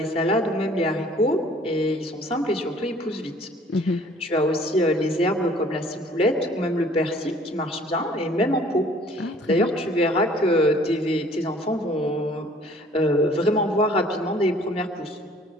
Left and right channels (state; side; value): normal; both; correlation 0.54